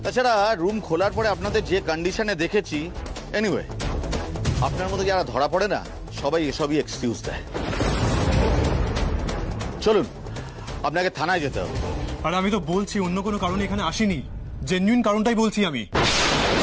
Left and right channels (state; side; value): identical; both; correlation 1.00